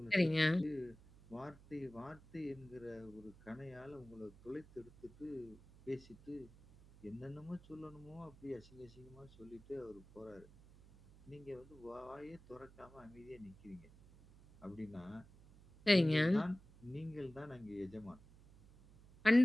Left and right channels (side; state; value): right; noise; hum, 22 dB below the sound